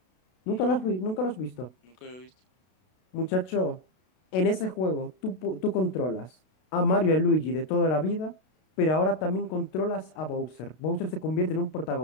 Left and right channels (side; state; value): right; late; 32 ms